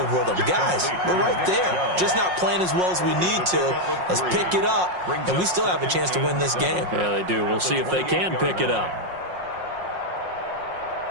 with them. Guys, we're right there. Just not playing as well as we need to. Let's pick it up, and we still have a chance to win this game. Yeah, they do. We'll see if they can pick it up.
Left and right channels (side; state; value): left; late; 5.5 ms